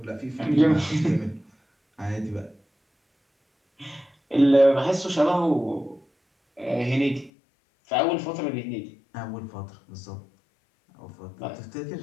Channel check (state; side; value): drops out; right; at 7.3 s